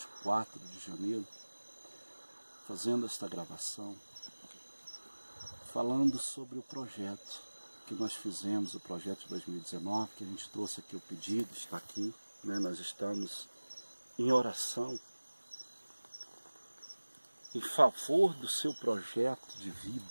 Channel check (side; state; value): both; inverted; correlation -1.00